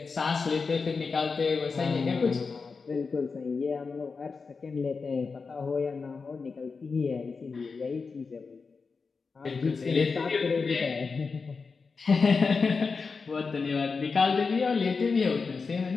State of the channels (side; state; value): right; quieter; 4.8 dB